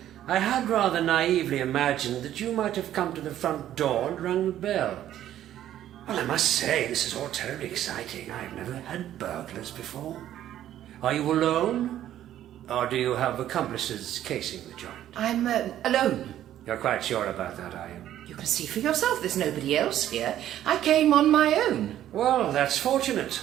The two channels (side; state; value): left; quieter; 12.0 dB